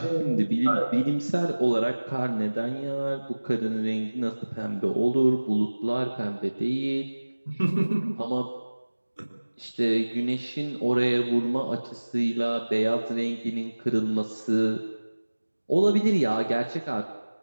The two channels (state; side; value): inverted; both; correlation -1.00